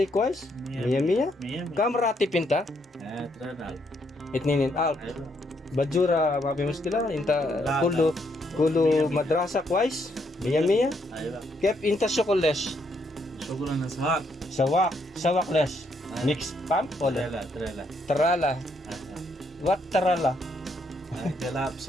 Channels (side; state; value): both; normal; correlation 0.74